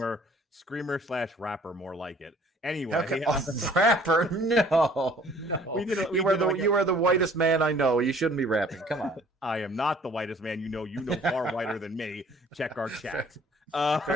screamer/rapper, more like it. Anyway, okay. Rapper? No. You are the whitest man I know. You shouldn't be rapping. Come on. I am not the whitest man you know. You know far whiter than me. Check our chat.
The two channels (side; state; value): both; normal; correlation 0.55